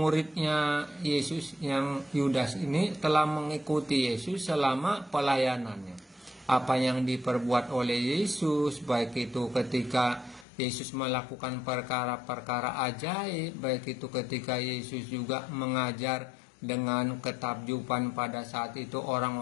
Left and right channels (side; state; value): right; drops out; at 10.5 s